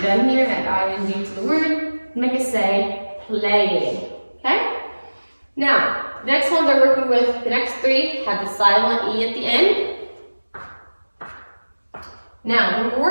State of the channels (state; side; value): inverted; both; correlation -1.00